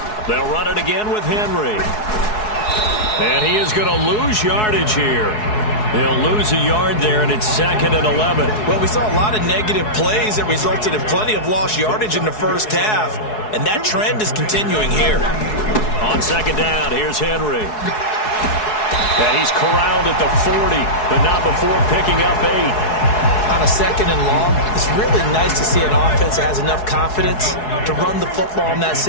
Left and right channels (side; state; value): right; late; 4.7 ms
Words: They'll run it again with Henry. And he is going to lose yardage here. They'll lose a yard there, and it's second and 11. Well, we saw a lot of negative plays that resulted in plenty of lost yardage in the first half, and that trend is continuing here. On second down, here's Henry. And he's corralled at the 40, but not before picking up 8. On a second and long, it's really nice to see an offense that has enough confidence to run the football in that